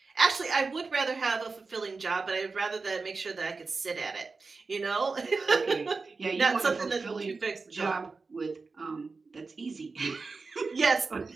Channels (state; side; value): quieter; left; 4.2 dB